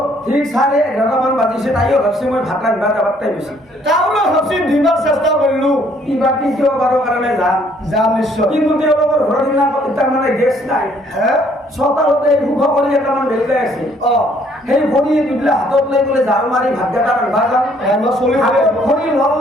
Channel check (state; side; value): normal; both; correlation 0.63